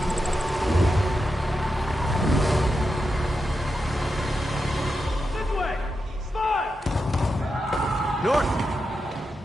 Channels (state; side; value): normal; both; correlation 0.87